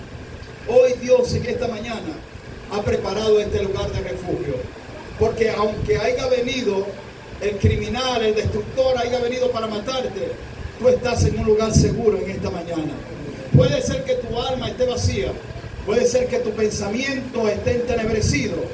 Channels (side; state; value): both; identical; correlation 1.00